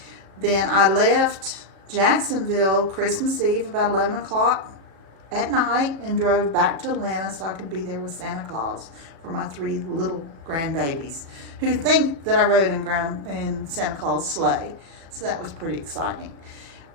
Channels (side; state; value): left; late; 36 ms